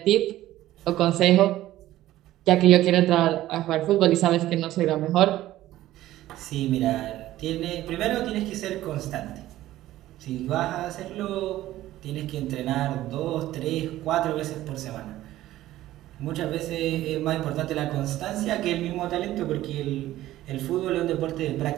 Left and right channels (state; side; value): quieter; left; 14.8 dB